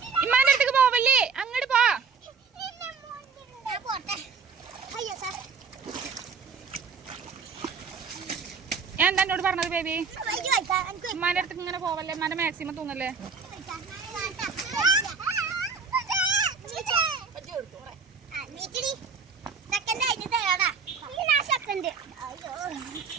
ഇമ്മാന്റെ അടുത്തേക്ക് പോവല്ലേ. അങ്ങോട്ട് പോ. ഞാൻ എന്താ എന്നോട് പറഞ്ഞത് ബേബി? ഉമ്മാന്റെ അടുത്തേക്ക് ഇങ്ങനെ പോവല്ലേ. ഉമ്മാന്റെ മാക്സിമം തൂങ്ങല്ലേ.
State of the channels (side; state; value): left; quieter; 5.4 dB